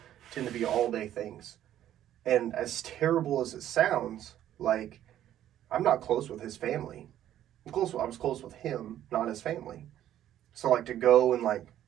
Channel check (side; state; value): left; quieter; 11.8 dB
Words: tend to be all-day things. And as terrible as it sounds, like, I'm not close with his family. I was close with him, not his family. So, like, to go and, like,